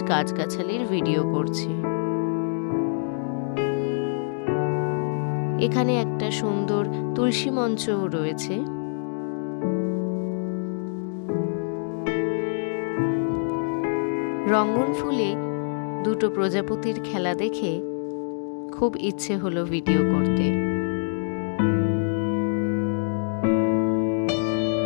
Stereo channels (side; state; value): right; silent; digital silence